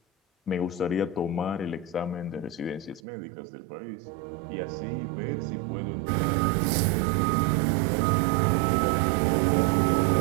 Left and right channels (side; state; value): left; drops out; at 3.0 s